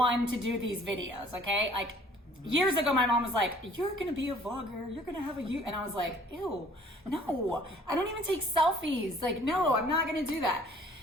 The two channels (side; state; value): both; normal; correlation 0.55